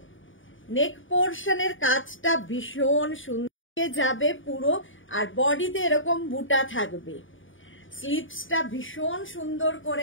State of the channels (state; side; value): late; right; 0.57 ms